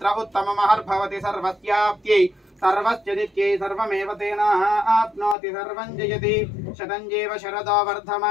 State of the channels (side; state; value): right; drops out; at 5.4 s